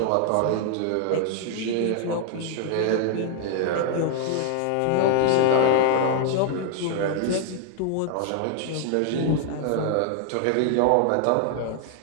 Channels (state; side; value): different; both; correlation 0.00